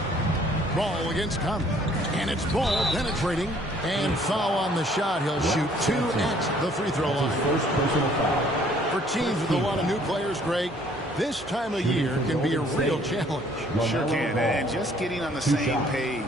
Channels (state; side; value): normal; both; correlation 0.60